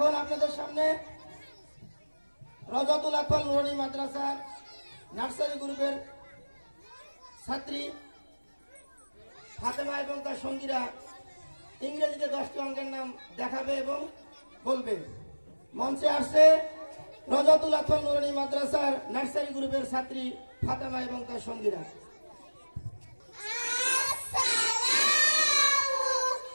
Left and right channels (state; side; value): inverted; both; correlation -1.00